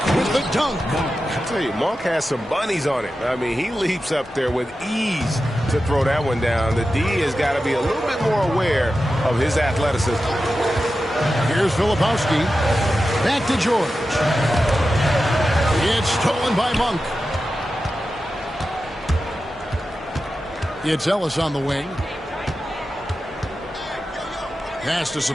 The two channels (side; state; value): both; normal; correlation 0.92